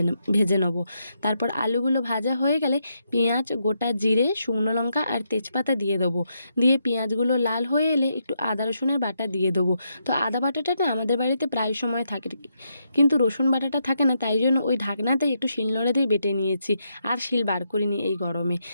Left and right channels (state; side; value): inverted; both; correlation -0.80